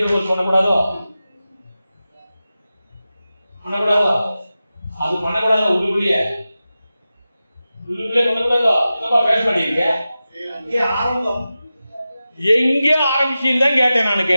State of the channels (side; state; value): both; inverted; correlation -0.94